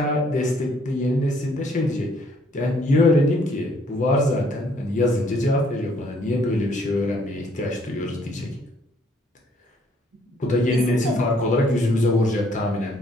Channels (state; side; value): normal; both; correlation 0.65